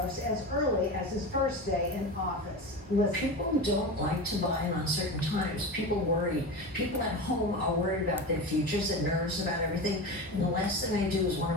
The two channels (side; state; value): both; normal; correlation 0.26